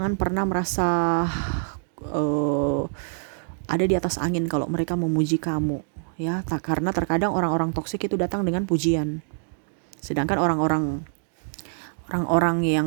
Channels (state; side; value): silent; left; digital silence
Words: pernah merasa ada di atas angin kalau mereka memuji kamu ya. Karena terkadang orang-orang toksik itu datang dengan pujian, sedangkan orang-orang